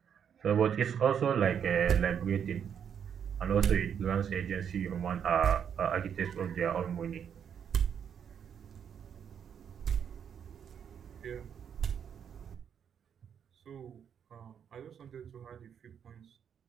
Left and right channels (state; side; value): quieter; left; 8.0 dB